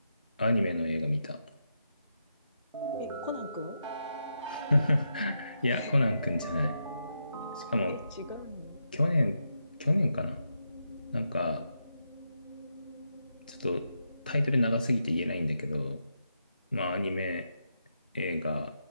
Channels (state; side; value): inverted; both; correlation -0.84